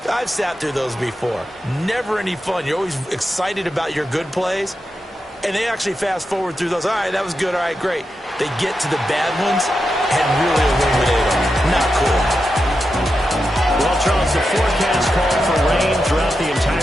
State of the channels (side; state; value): both; normal; correlation 0.88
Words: I've sat through those before. Never any fun. You're always excited about your good plays, and they actually fast forward through those. All right, that was good. All right, great. They get to the bad ones and really illuminate them. Not cool. Well, Charles, the forecast called for rain